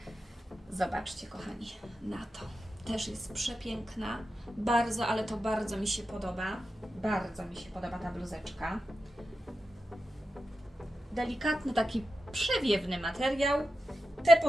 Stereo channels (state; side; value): normal; both; correlation 0.90